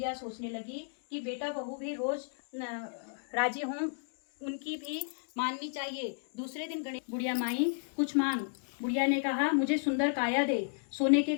सोचने लगी कि बेटा बहू भी रोज राजी हों, उनकी भी माननी चाहिए। दूसरे दिन गणेश, बुढ़िया माई कुछ मांग। बुढ़िया ने कहा, मुझे सुंदर काया दे, सोने के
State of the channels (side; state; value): right; silent; digital silence